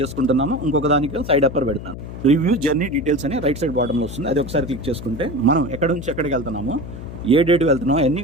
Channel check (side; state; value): left; noise; hum, 10 dB below the sound